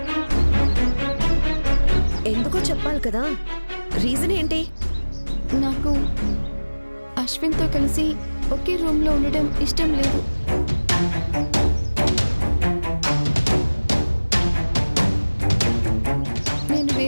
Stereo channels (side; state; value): both; inverted; correlation -1.00